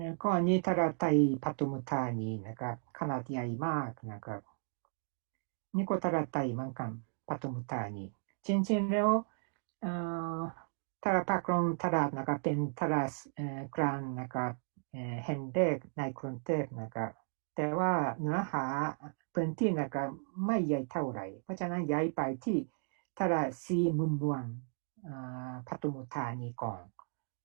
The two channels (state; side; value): silent; left; 54 dB below the other